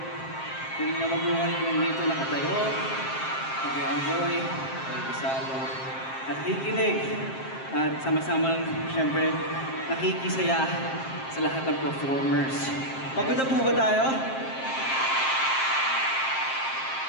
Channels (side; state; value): right; late; 7.6 ms